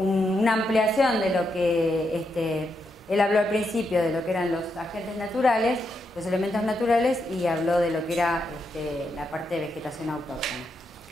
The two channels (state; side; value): normal; both; correlation 0.82